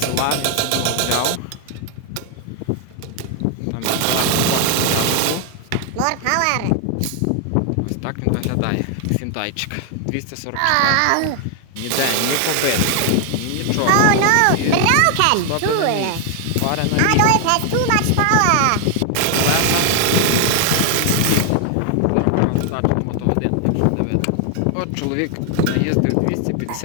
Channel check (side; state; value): both; different; correlation 0.00